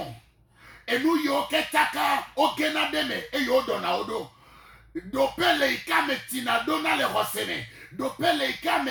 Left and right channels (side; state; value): both; identical; correlation 1.00